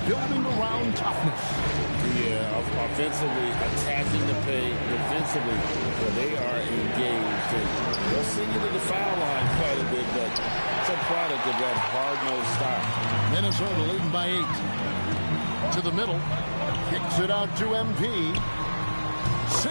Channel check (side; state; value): both; inverted; correlation -1.00